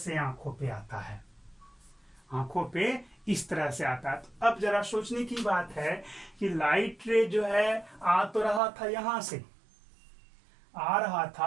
आंखों पे आता है, आंखों पे इस तरह से आता है। तो अब जरा सोचने की बात है कि लाइट रे जो है आ तो रहा था यहां से, आ रहा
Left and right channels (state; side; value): drops out; left; at 8.6 s